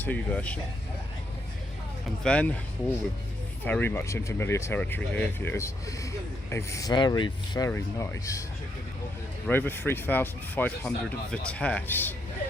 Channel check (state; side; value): normal; both; correlation 0.77